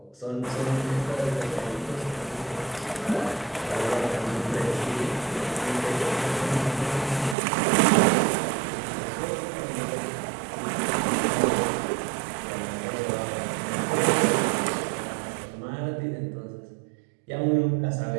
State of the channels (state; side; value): drops out; left; at 7.4 s